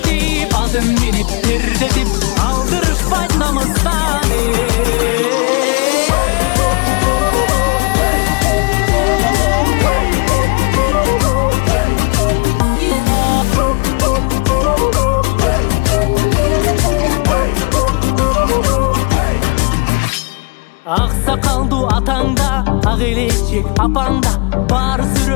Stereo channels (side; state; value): right; quieter; 29.9 dB